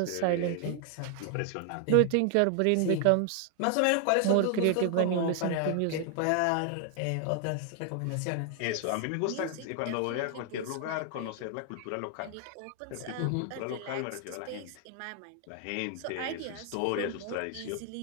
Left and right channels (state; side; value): different; both; correlation 0.00